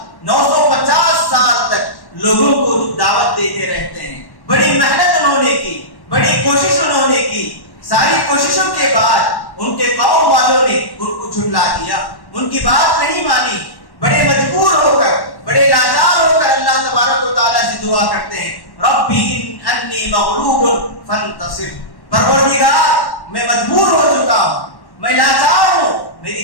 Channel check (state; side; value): late; right; 1.1 ms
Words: 950 سال تک لوگوں کو دعوت دیتے رہتے ہیں۔ بڑی محنت انہوں نے کی، بڑی کوشش انہوں نے کی، ساری کوششوں کے بعد ان کے قوم والوں نے ان کو جھٹلا دیا، ان کی بات نہیں مانی۔ بڑے مجبور ہو کر، بڑے لاچار ہو کر اللہ تبارک و تعالیٰ سے دعا کرتے ہیں ربی انی مغلوب فانتصر، پروردگار میں مجبور ہو چکا ہوں، میں لاچار ہوں، میری